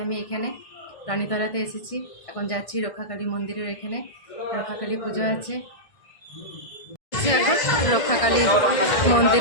আমি এখানে রানীতলাতে এসেছি। এখন যাচ্ছি রক্ষাকালী মন্দিরের, এখানে রক্ষাকালী পুজো আছে। এখন রক্ষাকালী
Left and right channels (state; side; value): late; right; 1.7 ms